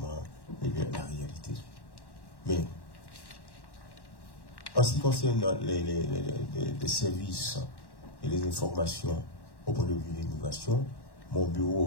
la réalité. Mais, en ce qui concerne les services et les informations au point de vue de l'immigration, mon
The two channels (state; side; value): late; right; 1.1 ms